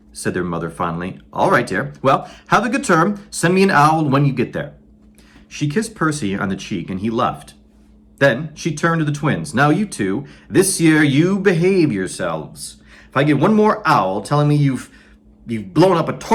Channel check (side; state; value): both; identical; correlation 1.00